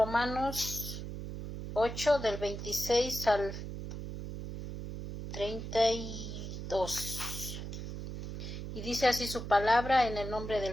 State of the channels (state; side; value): noise; right; hum, 7 dB below the sound